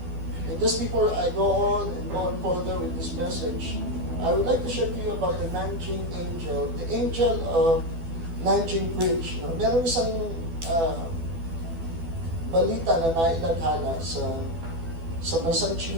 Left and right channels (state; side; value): late; left; 12 ms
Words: And just before I go on further with this message, I would like to share to you about the Nanjing angel, the angel of Nanjing Bridge. Meron isang balita na nailaghala sa bansang